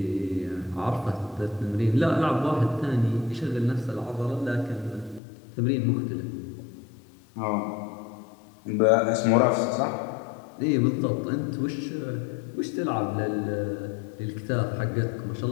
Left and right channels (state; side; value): drops out; right; at 5.2 s